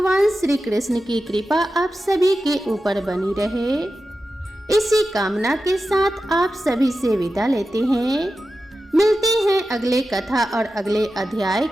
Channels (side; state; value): both; normal; correlation 0.92